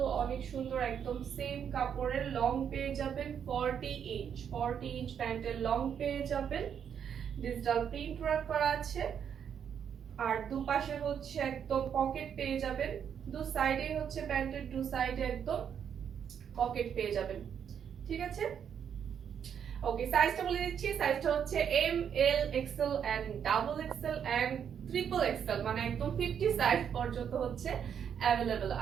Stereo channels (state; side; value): quieter; left; 8.1 dB